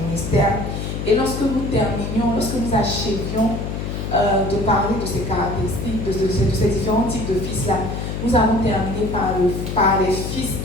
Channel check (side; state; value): left; noise; hum, 4 dB below the sound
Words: ministère. Et lorsque nous achevions de parler de ces caractéristiques, de ces différents types de fils-là, nous avons terminé par les fils